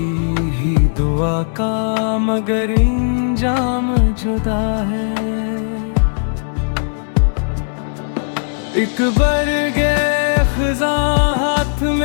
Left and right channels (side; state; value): right; silent; digital silence